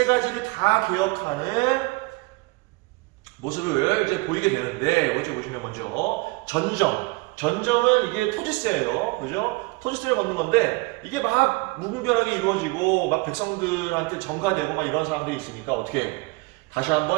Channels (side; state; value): left; quieter; 25.6 dB